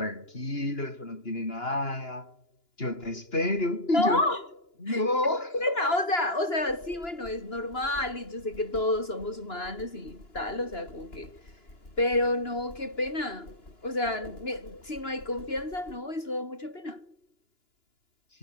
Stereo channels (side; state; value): right; late; 2.9 ms